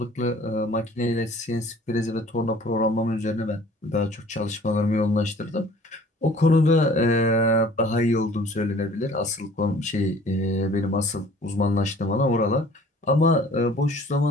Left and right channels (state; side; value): normal; both; correlation 0.51